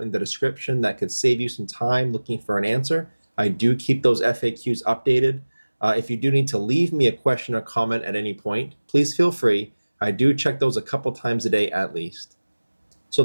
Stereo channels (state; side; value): inverted; both; correlation -1.00